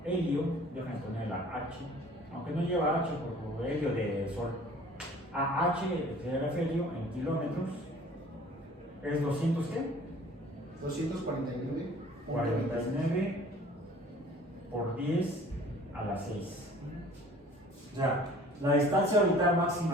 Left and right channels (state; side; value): normal; both; correlation 0.50